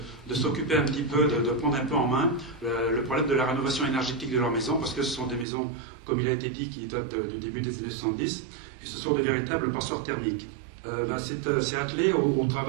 s'occuper un petit peu, de prendre un peu en main le problème de la rénovation énergétique de leurs maisons, parce que ce sont des maisons, comme il a été dit, qui datent du début des années 70, et ce sont de véritables passoires thermiques. C'est attelé au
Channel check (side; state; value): left; drops out; at 5.5 s